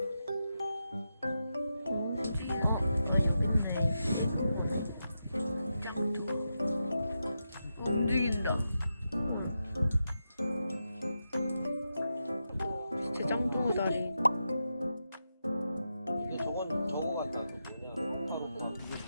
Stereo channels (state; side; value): inverted; both; correlation -0.87